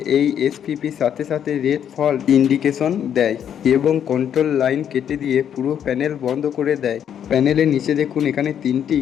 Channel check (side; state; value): right; quieter; 9.1 dB